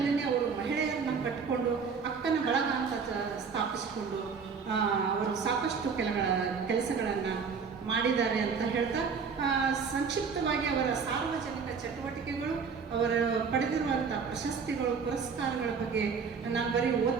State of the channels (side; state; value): left; quieter; 5.7 dB